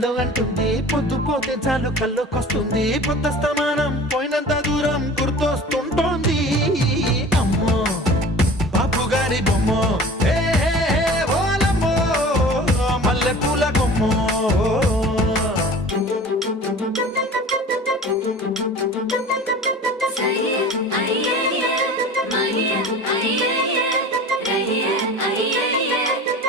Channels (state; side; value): normal; both; correlation 0.40